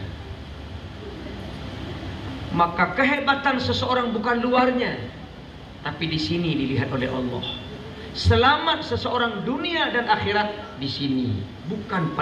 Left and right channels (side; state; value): both; identical; correlation 1.00